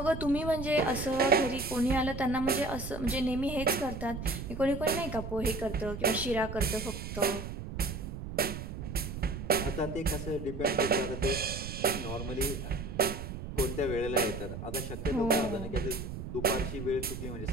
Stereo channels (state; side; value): noise; right; rumble, 7 dB below the sound